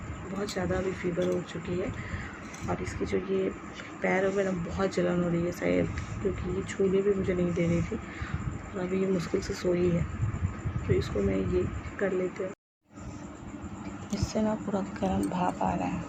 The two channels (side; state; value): both; identical; correlation 1.00